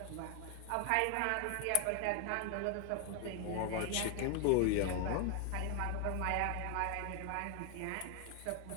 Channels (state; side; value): different; both; correlation 0.00